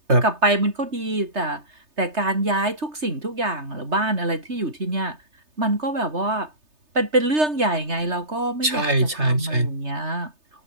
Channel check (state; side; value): late; left; 3.3 ms